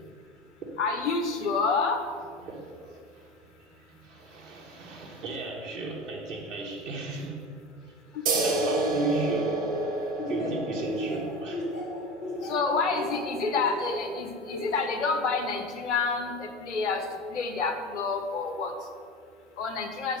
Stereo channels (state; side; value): normal; both; correlation 0.30